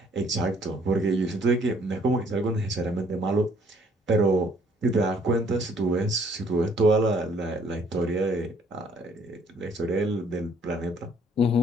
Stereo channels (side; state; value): both; normal; correlation 0.62